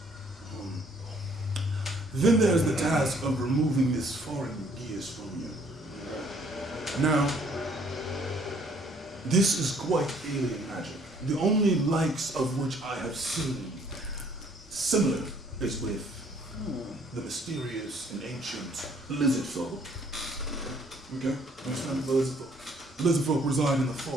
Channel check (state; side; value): normal; both; correlation 0.61